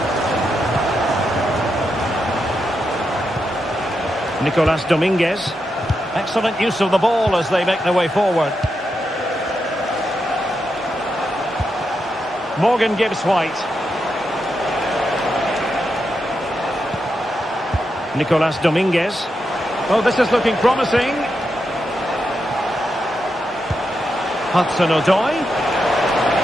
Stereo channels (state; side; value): normal; both; correlation 0.85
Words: Nicolas Dominguez. Excellent use of the ball as they make their way forward. Morgan Gibbs White. Nicolas Dominguez. Oh, this is looking promising. Hudson-Odoi.